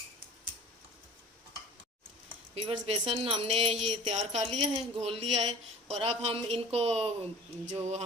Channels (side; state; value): both; normal; correlation 0.42